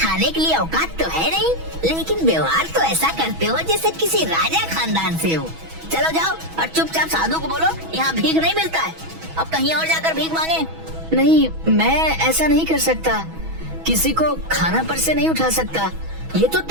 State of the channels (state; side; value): late; left; 6.2 ms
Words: के लिए औकात तो है नहीं, लेकिन व्यवहार तो ऐसा करते हो जैसे किसी राजा खानदान से हो। चलो जाओ और चुपचाप साधु को बोलो यहाँ भीख नहीं मिलता है, अब कहीं और जाकर भीख मांगे। नहीं, मैं ऐसा नहीं कर सकता। किसी को खाना पर से नहीं उठा सकता। ये तो